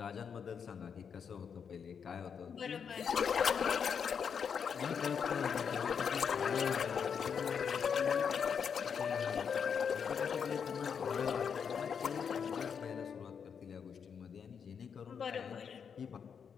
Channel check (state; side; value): quieter; right; 6.9 dB